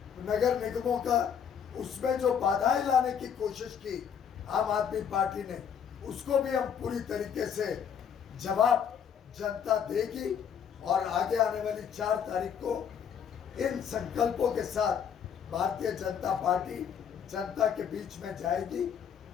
नगर निगमों का, उसमें जो बाधाएं लाने की कोशिश की आम आदमी पार्टी ने, उसको भी हम पूरी तरीके से जवाब जनता देगी और आगे आने वाली 4 तारीख को इन संकल्पों के साथ भारतीय जनता पार्टी जनता के बीच में जाएगी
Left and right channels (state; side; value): quieter; right; 7.8 dB